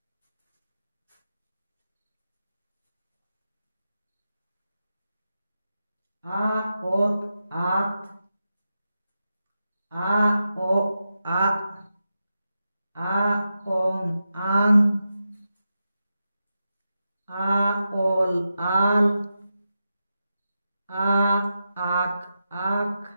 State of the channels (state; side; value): inverted; both; correlation -0.89